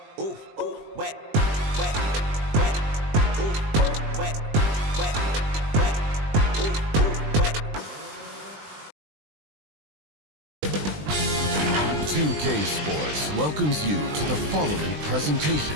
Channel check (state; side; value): late; left; 20 ms